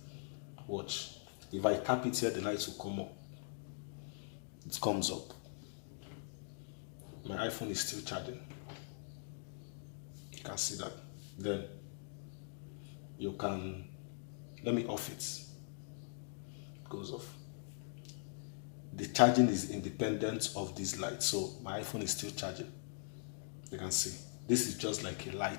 Watch. If I tap it here, the lights will come up. It comes up. My iPhone is still charging. You can see that. Then you can, let me off it. It goes off. The charging is independent of these lights, so my iPhone is still charging. You can see. This is just like a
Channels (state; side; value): silent; right; digital silence